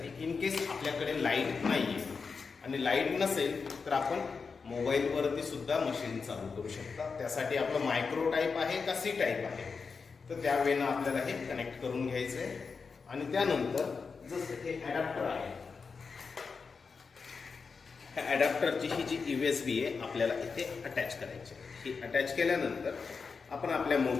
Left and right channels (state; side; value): quieter; right; 5.1 dB